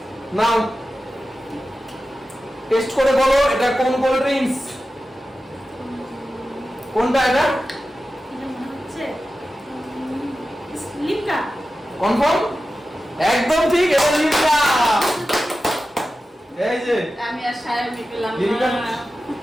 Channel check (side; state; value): both; normal; correlation 0.93